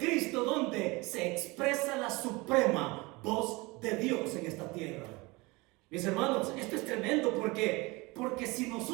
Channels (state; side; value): quieter; left; 24.2 dB